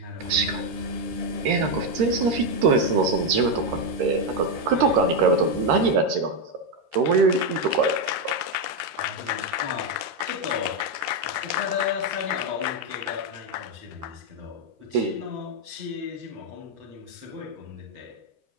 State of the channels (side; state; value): left; late; 13 ms